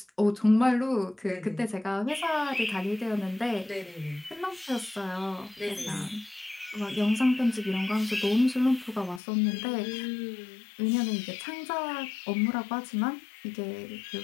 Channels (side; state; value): right; drops out; at 9.2 s